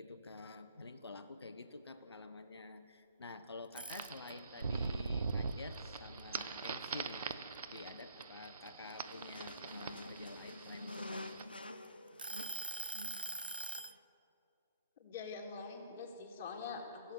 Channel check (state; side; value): inverted; both; correlation -0.61